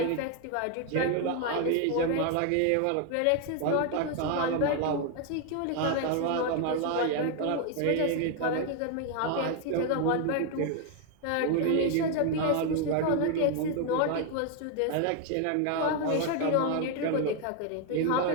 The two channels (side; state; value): both; different; correlation 0.01